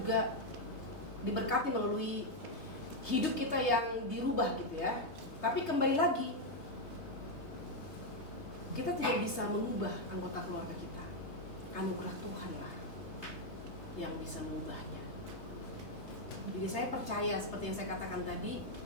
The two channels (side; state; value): right; late; 3.3 ms